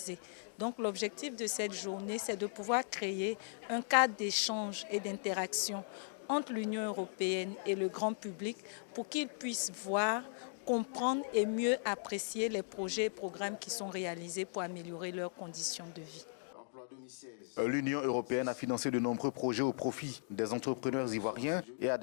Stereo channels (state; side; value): silent; right; digital silence